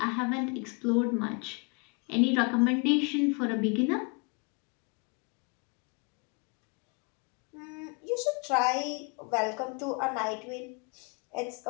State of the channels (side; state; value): right; quieter; 33.3 dB